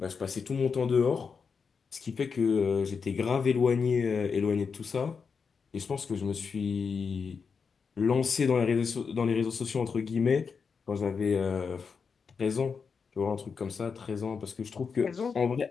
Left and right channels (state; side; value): quieter; right; 5.7 dB